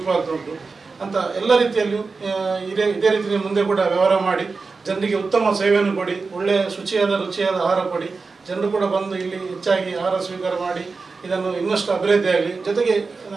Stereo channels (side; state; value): left; quieter; 4.3 dB